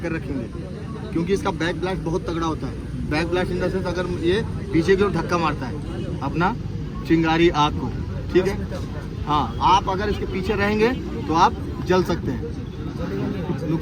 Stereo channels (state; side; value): identical; both; correlation 1.00